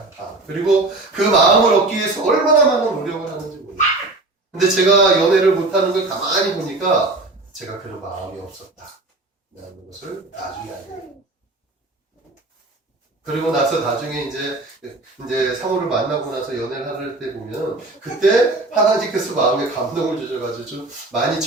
그리고 그 마음을 얻기 위해서 얼마나 많은 노력을 하는지 몰라요. 근데 제가 연애를 못하는 걸 가만히 보니까 제가 그런 마음이 없었다. 라는 것을 나중에 알게 돼요. 그리고 나서 나중에 이제 상호를 만나고 나서 연애를 할 때 보면 그때 하나님께서 마음에 감동을 주셔가지고 좀 많이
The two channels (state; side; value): quieter; left; 3.0 dB